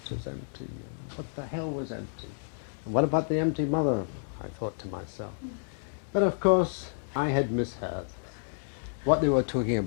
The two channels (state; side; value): silent; right; digital silence